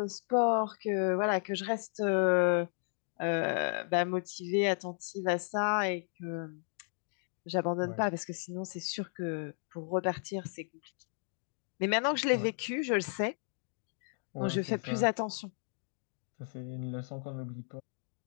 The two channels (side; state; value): right; silent; 55 dB below the other